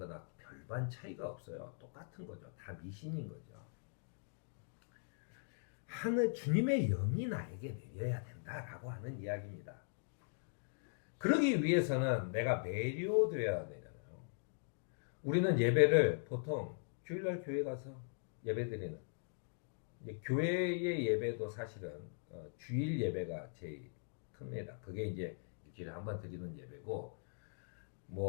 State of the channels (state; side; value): silent; right; digital silence